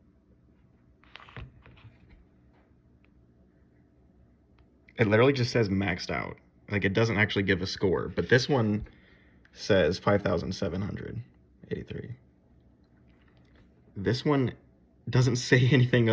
It literally just says maxed out. Like, it doesn't actually give a score, but this one says 5,783. This one doesn't say anything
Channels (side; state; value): both; identical; correlation 1.00